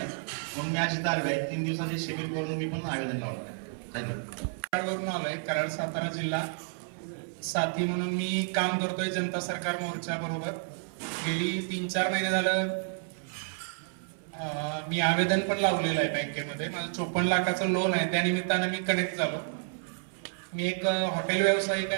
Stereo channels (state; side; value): silent; left; 58 dB below the other